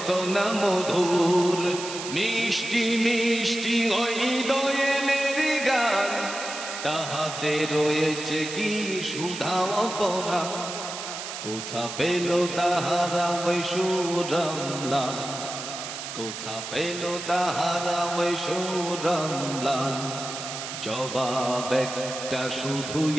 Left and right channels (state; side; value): noise; right; hiss, 8 dB below the sound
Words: না মধুর মিষ্টি মিষ্টি ওই দোয়েলের গান তাহাতে রয়েছে কি সুধা পরা কোথা পেল তাহারা ওই সুরমলা কোথা পেল তাহারা ওই সুরমলা জবাব একটা শুধু